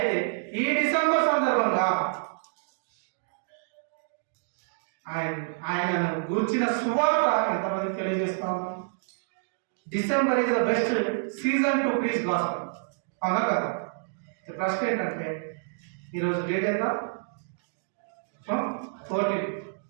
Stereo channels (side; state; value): left; silent; digital silence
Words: ఈ డిసెంబర్ సందర్భంగా ఆయనను గూర్చిన సువార్త ఎంతమందికి తెలియజేస్తా ఉన్నాం? December is the best season to preach gospel. అవునా కదా? ప్రశ్న ఏంటంటే ఈరోజు డేట్ ఎంత? 14.